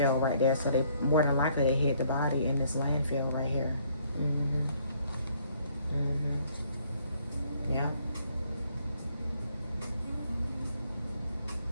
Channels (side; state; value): both; inverted; correlation -0.65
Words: right there, so they more than likely they hid the body in this landfill right here. Yeah.